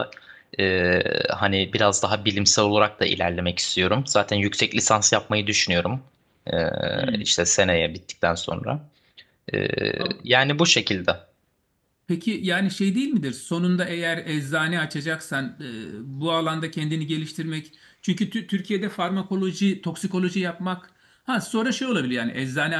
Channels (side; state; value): both; identical; correlation 1.00